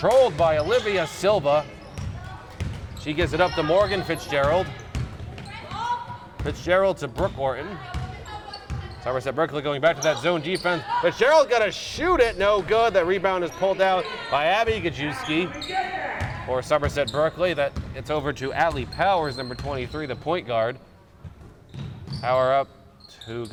by Olivia Silva. She gives it up to Morgan Fitzgerald. Fitzgerald to Brooke Orton. Somerset-Berkley going back to that zone defense. Fitzgerald got to shoot it, no good. That rebound is pulled out by Abby Gajewski for Somerset-Berkley. That it's over to Allie Powers, number 23, the point guard. Power up to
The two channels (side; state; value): both; identical; correlation 1.00